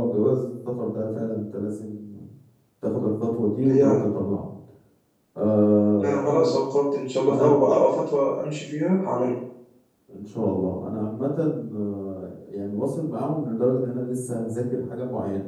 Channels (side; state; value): both; identical; correlation 1.00